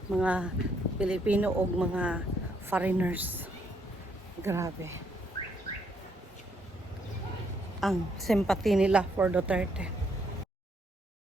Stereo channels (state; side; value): normal; both; correlation 0.72